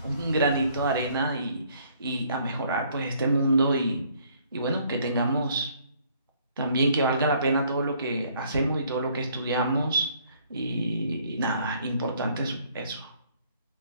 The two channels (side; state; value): both; inverted; correlation -0.63